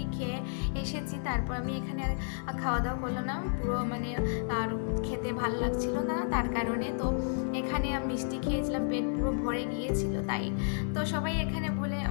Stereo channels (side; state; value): right; silent; 57 dB below the other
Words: খেয়ে এসেছি, তারপর আমি এখানে আর খাওয়া দাওয়া করলাম না, পুরো আর খেতে ভালো লাগছিল না, তার কারণে। তো এখানে আমি মিষ্টি খেয়েছিলাম, পেট পুরো ভরে গিয়েছিল তাই। তো সবাই এখানে